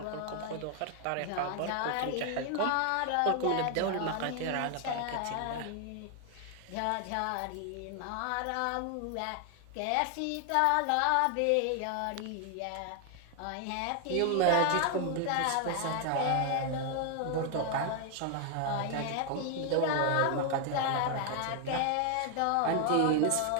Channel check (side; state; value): both; different; correlation 0.00